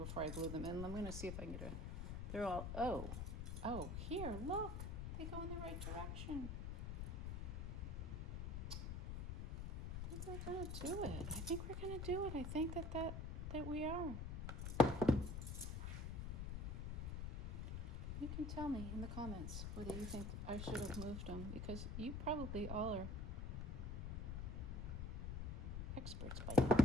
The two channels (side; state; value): left; noise; rumble, 3 dB below the sound